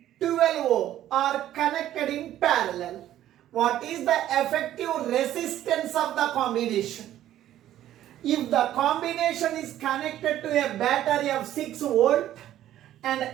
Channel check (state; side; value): quieter; left; 12.5 dB